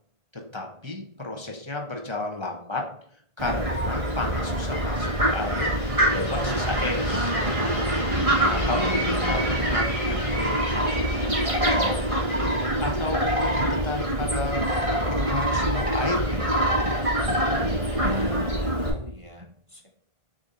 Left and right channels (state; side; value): late; left; 1.6 ms